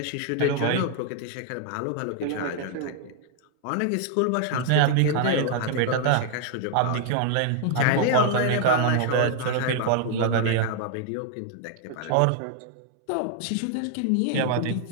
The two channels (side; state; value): both; different; correlation 0.00